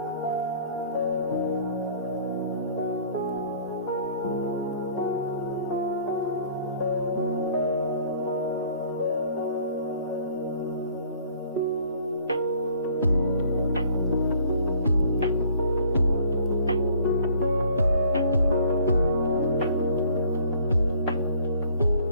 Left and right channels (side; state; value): both; inverted; correlation -0.56